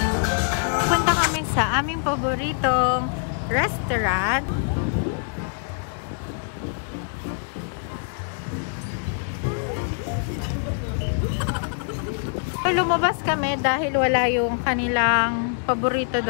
Punta kami sa aming paboritong restaurant. Lumabas kami dahil wala yung kanilang paborito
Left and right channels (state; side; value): silent; right; digital silence